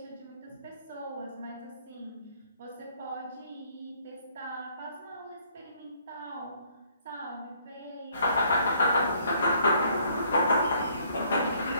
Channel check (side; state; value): both; inverted; correlation -0.64